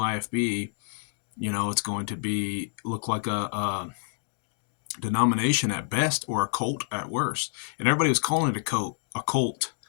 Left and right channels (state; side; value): silent; right; digital silence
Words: it's going to look like a denomination at best or a cult at worst. And everybody was calling it a cult,